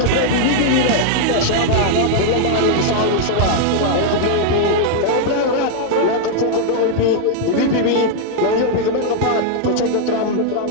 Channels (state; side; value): different; both; correlation 0.00